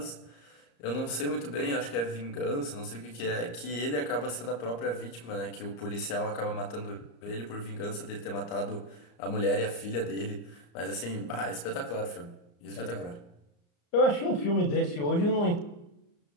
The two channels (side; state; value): right; late; 34 ms